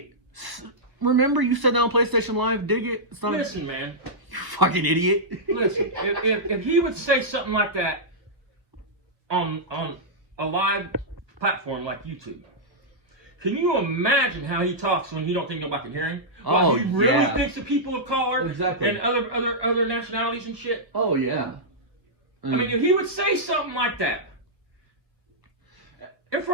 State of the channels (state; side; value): late; left; 1.4 ms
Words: Remember you said that on PlayStation Live? Dig it. It's not. Listen, man. You fucking idiot. Listen, if he would say something like that on a live platform like YouTube, can you imagine how he talks when he don't think nobody can hear him? Oh, he really yeah. thinks of people of color Exactly. and other nationalities and shit. Oh yeah. I mean, if he would say something like that in